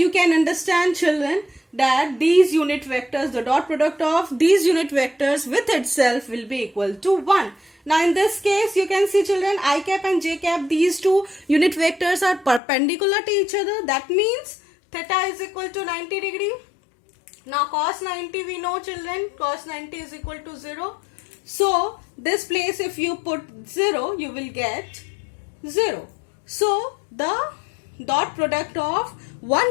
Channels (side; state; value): right; drops out; at 12.6 s